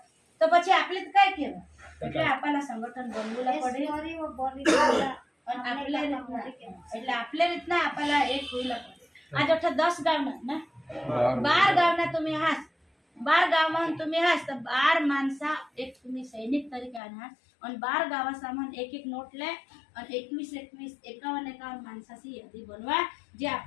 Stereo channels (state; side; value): drops out; right; at 17.0 s